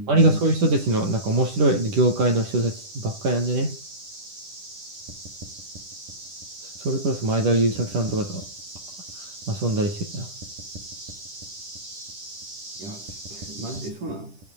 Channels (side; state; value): left; late; 10 ms